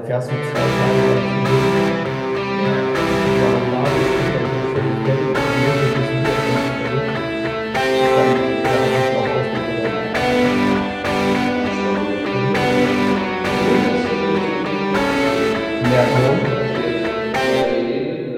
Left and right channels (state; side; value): identical; both; correlation 1.00